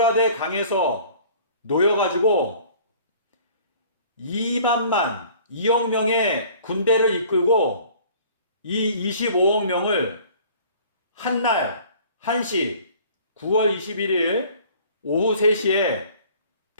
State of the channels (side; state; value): both; inverted; correlation -0.50